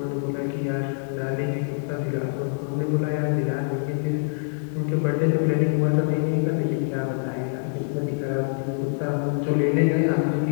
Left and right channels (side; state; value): right; silent; 62 dB below the other